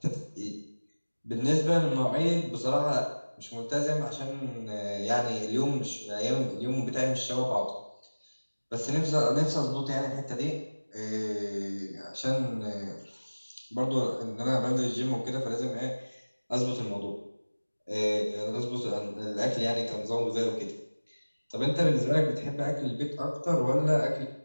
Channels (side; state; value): both; inverted; correlation -1.00